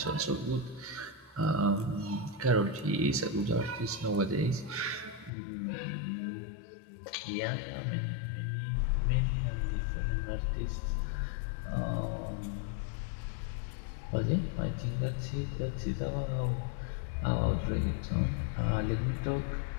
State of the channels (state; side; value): drops out; right; at 5.3 s